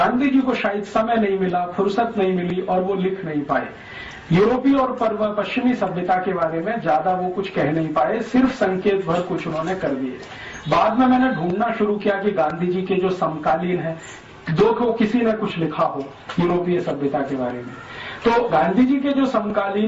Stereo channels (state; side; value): identical; both; correlation 1.00